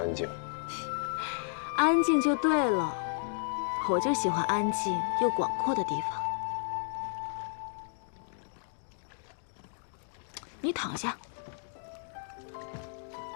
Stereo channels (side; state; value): right; silent; digital silence